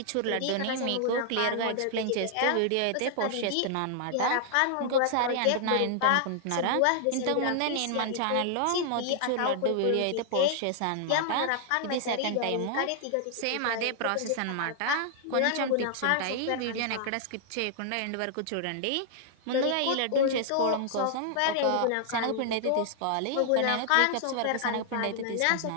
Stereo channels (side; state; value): both; different; correlation 0.00